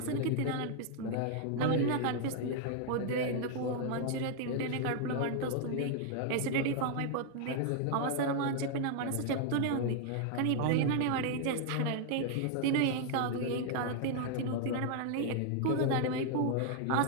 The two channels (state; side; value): different; both; correlation 0.00